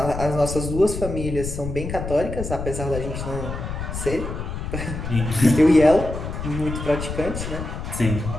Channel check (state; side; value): noise; left; rumble, 6 dB below the sound